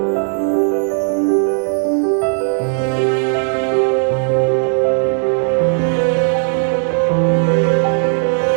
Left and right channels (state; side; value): silent; left; 66 dB below the other